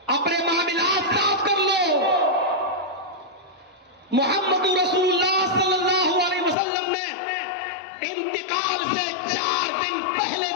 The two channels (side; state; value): right; drops out; at 6.6 s